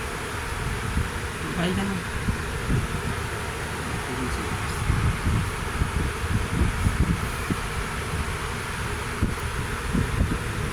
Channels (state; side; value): identical; both; correlation 1.00